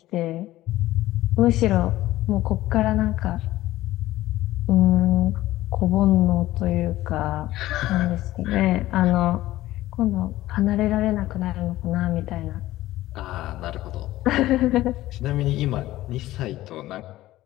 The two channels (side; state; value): right; quieter; 15.8 dB